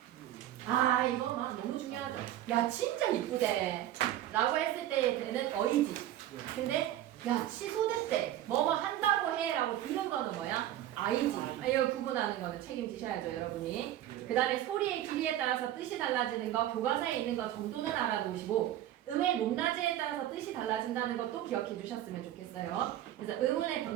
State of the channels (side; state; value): left; quieter; 12.7 dB